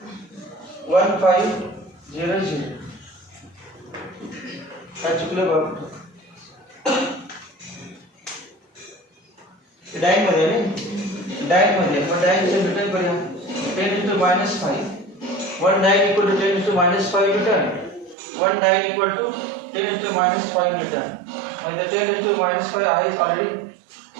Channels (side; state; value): left; drops out; at 18.2 s